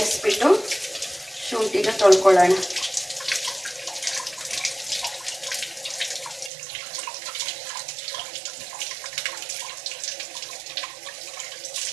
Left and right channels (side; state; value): left; drops out; at 6.5 s